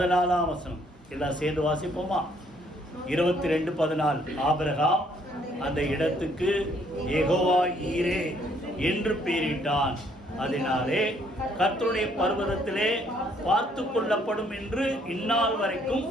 வசனம். எல்லாம் சேர்ந்து வாசிப்போமா? 22:14. ஆபிரகாம் அந்த இடத்துக்கு யெகோவா ஈரே என்று பெயரிட்டான். அதனாலே கர்த்தருடைய பர்வதத்திலே பார்த்து கொள்ளப்படும் என்று இந்நாள் வரைக்கும்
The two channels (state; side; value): normal; both; correlation 0.66